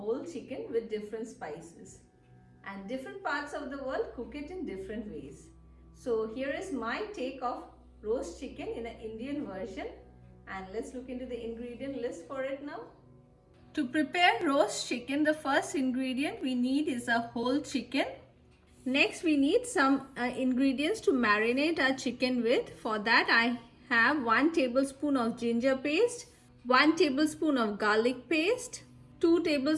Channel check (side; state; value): both; identical; correlation 1.00